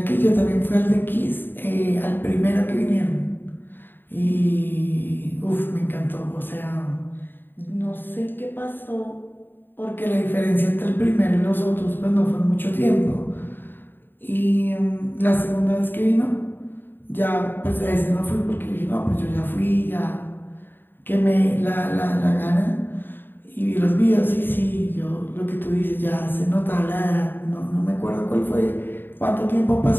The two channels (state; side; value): late; right; 0.095 ms